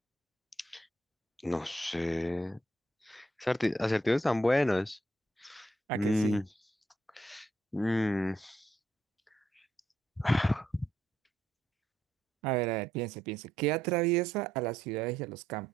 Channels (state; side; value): normal; both; correlation 0.76